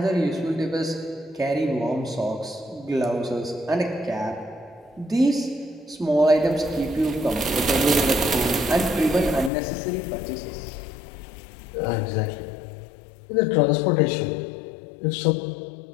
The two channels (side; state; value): right; drops out; at 9.5 s